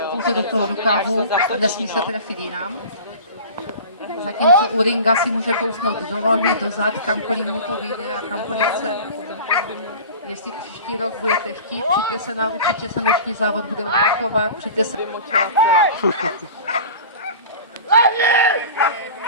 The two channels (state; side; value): inverted; both; correlation -0.37